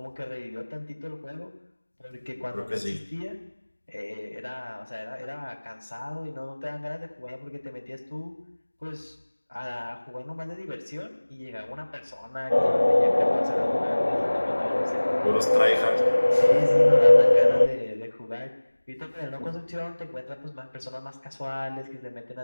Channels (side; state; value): both; inverted; correlation -1.00